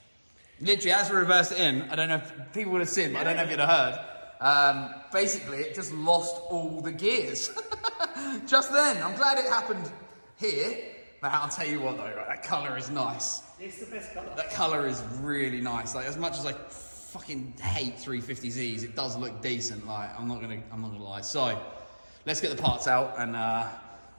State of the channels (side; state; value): both; inverted; correlation -1.00